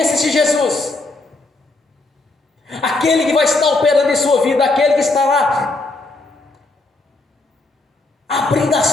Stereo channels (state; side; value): quieter; right; 3.2 dB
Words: esse Jesus. Aquele que vai estar operando em sua vida, aquele que estará abrindo